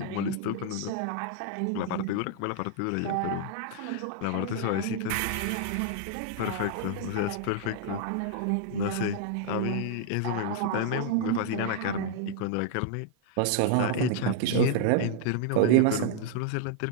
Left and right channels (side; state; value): both; different; correlation 0.00